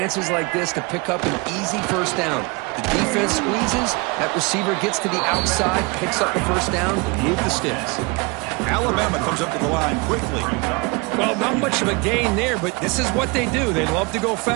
like this to pick up an easy first down. The defense squeezes, that receiver gets to the outside, picks up the first down, move the sticks. Alabama comes up to the line quickly. Well, not much of a gain there, but this is what they do. They love to go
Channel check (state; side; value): quieter; left; 28.3 dB